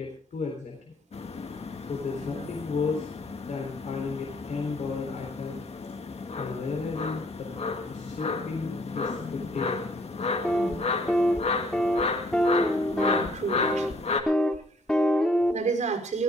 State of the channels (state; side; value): normal; both; correlation 0.63